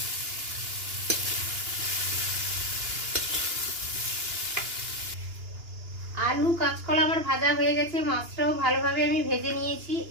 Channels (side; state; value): left; late; 2.9 ms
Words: আলু কাঁচকলা আমার ভাজা হয়ে গেছে, মাছটাও ভালোভাবে আমি ভেজে নিয়েছি।